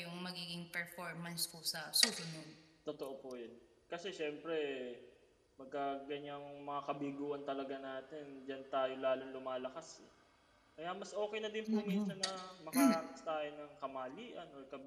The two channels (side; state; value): both; identical; correlation 1.00